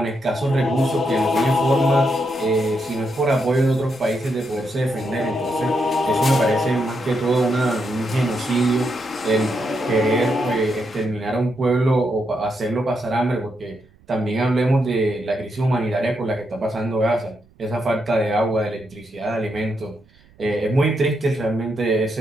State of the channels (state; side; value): noise; right; rumble, 29 dB below the sound